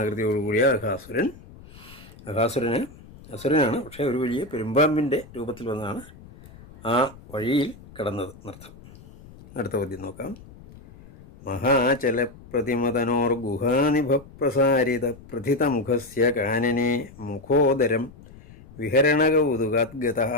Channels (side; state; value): left; noise; rumble, 21 dB below the sound